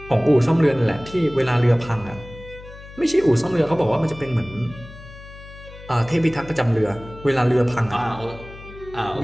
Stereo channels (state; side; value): noise; left; hum, 17 dB below the sound